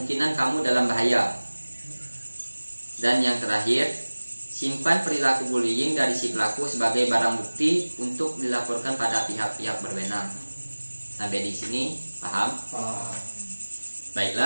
kamu dalam bahaya. Dan yang terakhir, simpan perilaku bullying dari si pelaku sebagai barang bukti untuk dilaporkan pada pihak-pihak berwenang. Sampai di sini paham?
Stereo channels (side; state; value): both; inverted; correlation -1.00